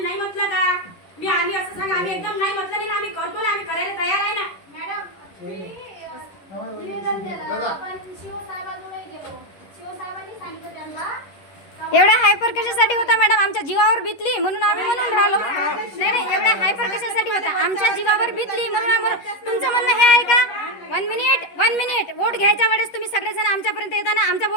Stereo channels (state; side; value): late; right; 11 ms